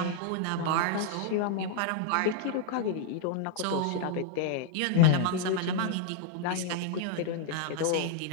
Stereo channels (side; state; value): both; different; correlation 0.00